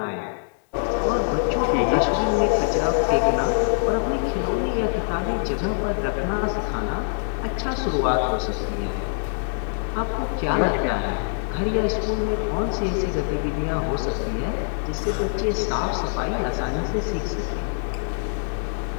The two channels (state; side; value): silent; right; digital silence